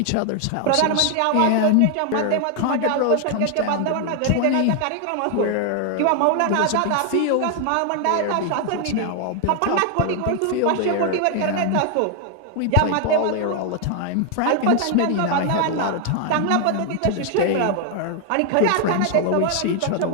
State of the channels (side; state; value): both; different; correlation 0.00